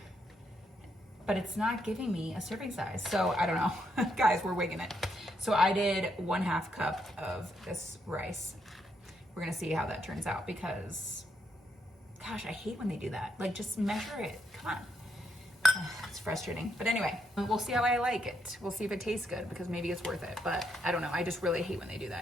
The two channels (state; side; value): normal; both; correlation 0.78